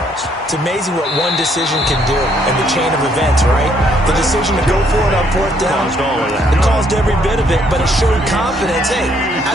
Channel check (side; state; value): both; normal; correlation 0.68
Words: It's amazing what one decision can do in the chain of events, right? The decision to go for it on fourth down, it caused every bit of it, but it showed confidence. Hey,